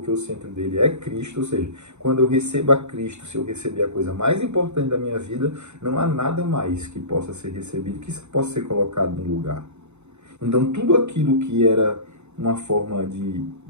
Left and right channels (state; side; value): late; left; 0.82 ms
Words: o centro dele é Cristo, ou seja, quando eu recebo a Cristo, se eu receber a coisa mais importante da minha vida, não há nada mais que possa ser recebido, que possa ser colocado no lugar. Então, tudo aquilo que era uma forma de